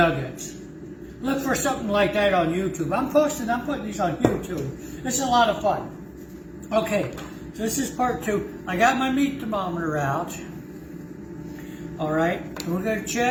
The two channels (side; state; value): both; identical; correlation 1.00